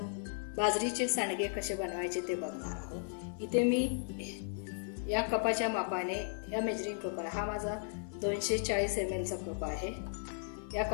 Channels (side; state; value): right; silent; 54 dB below the other